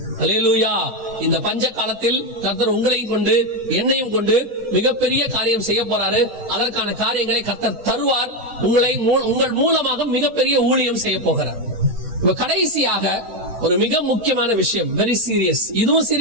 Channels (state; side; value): late; left; 10 ms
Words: அல்லேலூயா. இந்த பஞ்ச காலத்தில் கர்த்தர் உங்களையும் கொண்டு என்னையும் கொண்டு மிகப்பெரிய காரியம் செய்ய போறாரு. அதற்கான காரியங்களை கர்த்தர் தருவார். உங்கள் மூலமாக மிகப்பெரிய ஊழியம் செய்ய போகிறார். இப்ப கடைசியாக ஒரு மிக முக்கியமான விஷயம், வெரி சீரியஸ். இதுவும்